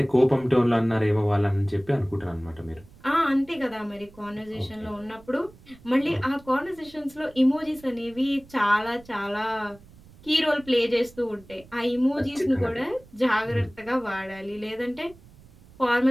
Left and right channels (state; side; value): noise; right; rumble, 24 dB below the sound